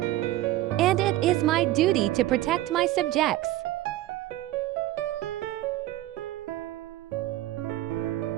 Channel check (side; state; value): left; quieter; 15.5 dB